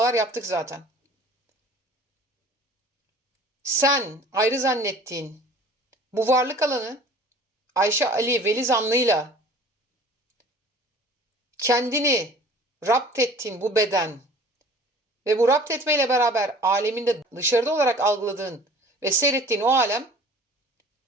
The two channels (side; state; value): both; normal; correlation 0.47